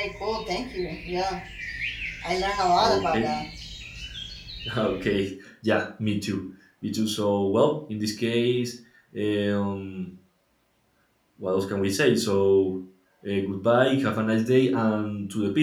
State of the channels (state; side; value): identical; both; correlation 1.00